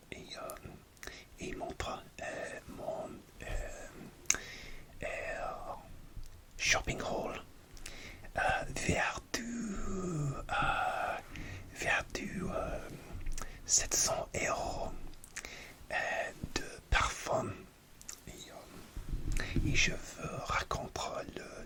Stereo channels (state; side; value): identical; both; correlation 1.00